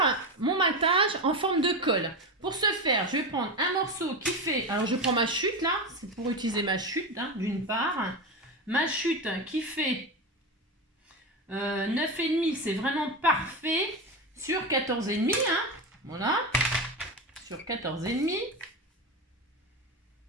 mon matage en forme de colle. Pour ce faire, je vais prendre un morceau qui fait... Alors, je prends ma chute, là. C'est pour utiliser ma chute, hein, d'une part. Ma chute qui fait... 9,5, c'est vraiment parfait. Sur 14,5, hein. Voilà. Sur 14,5.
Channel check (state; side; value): normal; both; correlation 0.19